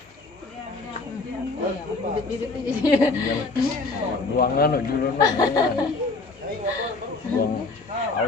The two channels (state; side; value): quieter; right; 3.6 dB